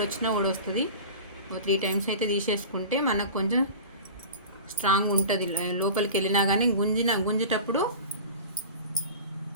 ఊడొస్తుంది. 3 times అయితే తీసేసుకుంటే మనకు కొంచెం స్ట్రాంగ్ ఉంటుంది. లోపలికి వెళ్ళినా కానీ గుంజేటప్పుడు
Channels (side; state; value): both; inverted; correlation -0.35